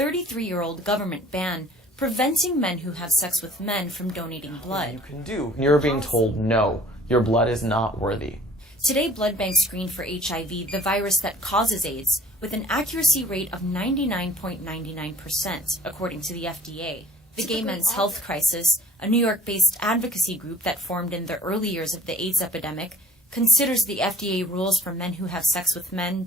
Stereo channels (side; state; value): both; normal; correlation 0.51